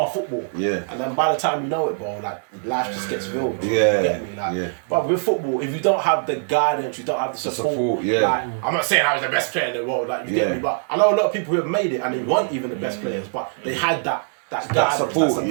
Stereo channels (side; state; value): left; silent; 64 dB below the other